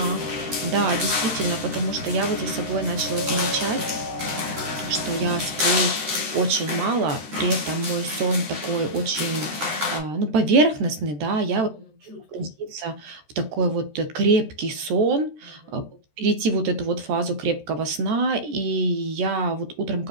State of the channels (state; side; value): late; left; 13 ms